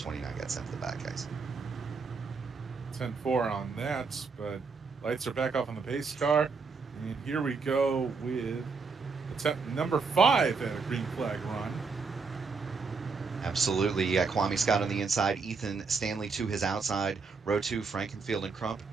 got sent to the back, guys. 10-4 on that, but lights are back off on the pace car. And here we go with attempt number 5 at a green flag run. Absolutely. You got Kwame Scott on the inside, Ethan Stanley to his outside, row 2, Frankenfield and Crump,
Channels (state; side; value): quieter; left; 4.8 dB